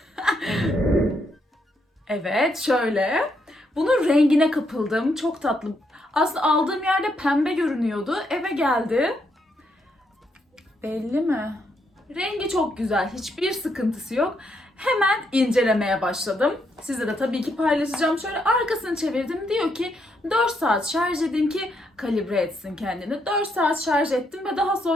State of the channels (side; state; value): both; normal; correlation 0.77